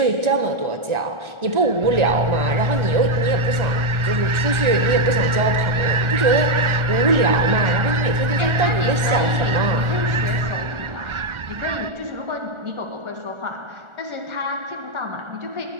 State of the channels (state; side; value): late; left; 1.4 ms